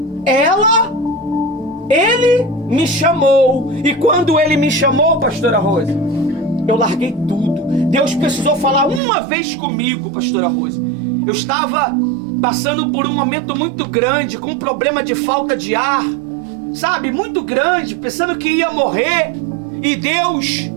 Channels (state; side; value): drops out; left; at 9.0 s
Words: ele me chamou. E quando ele me chamou, pastora Rose, eu larguei tudo. Deus precisou falar uma vez comigo, pastora Rose. Eu estava passando por um momento muito grande, com um problema de falta de ar, sabe, muito grande, pensando que ia morrer. E Deus,